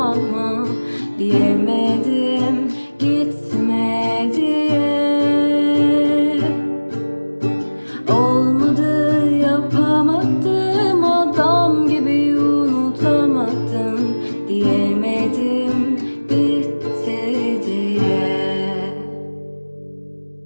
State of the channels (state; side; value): inverted; both; correlation -1.00